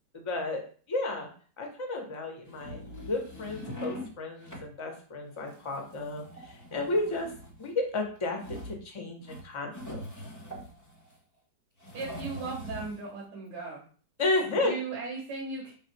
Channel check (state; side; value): late; left; 4.4 ms